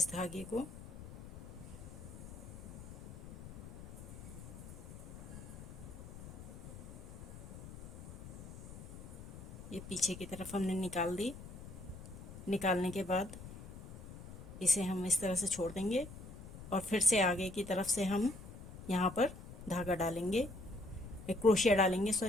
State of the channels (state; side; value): noise; left; rumble, 13 dB below the sound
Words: धागे को ये पीछे की तरफ हमने निकाल दी। निकालने के बाद इसे हम इस तरह से छोड़ देंगे और फिर से आगे की तरफ से हम यहाँ पर धागा डालेंगे, क्रोशिया डालेंगे